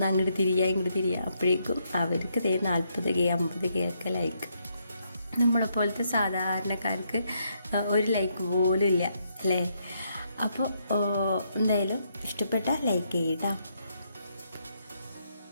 അങ്ങോട്ട് ഇങ്ങോട്ട് തിരിയുക, അപ്പോഴേക്കും അവർക്ക് 40K 50K ഒക്കെ ലൈക്ക്. നമ്മളെപ്പോലത്തെ സാധാരണക്കാർക്ക് ഒരു ലൈക്ക് പോലും ഇല്ല അല്ലേ. അപ്പോൾ എന്തായാലും ഇഷ്ടപ്പെട്ട ലൈക്ക് ചെയ്യട്ടോ.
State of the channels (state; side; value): inverted; both; correlation -0.76